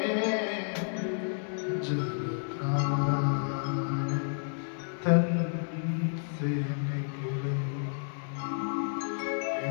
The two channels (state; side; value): silent; right; digital silence